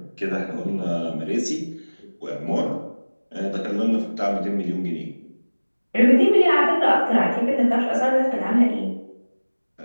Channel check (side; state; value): both; inverted; correlation -1.00